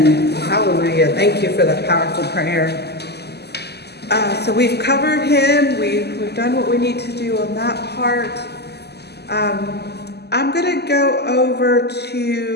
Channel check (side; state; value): right; late; 0.48 ms